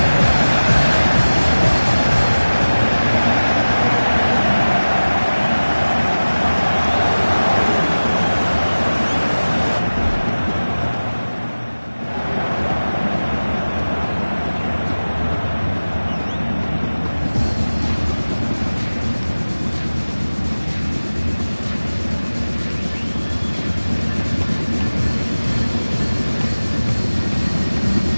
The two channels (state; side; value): inverted; both; correlation -1.00